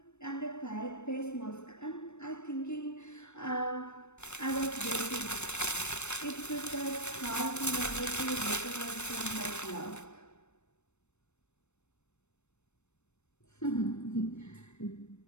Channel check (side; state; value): right; late; 0.82 ms